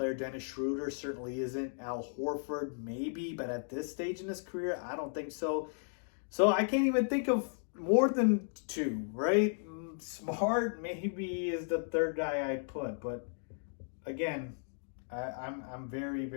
Dennis Schroeder certainly isn't. Al Horford, maybe, but at this stage in his career, I don't think so. So I can't even think of more than two, right? Smart maybe is the third guy I'd put, but again, I'm very,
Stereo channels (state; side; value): silent; right; digital silence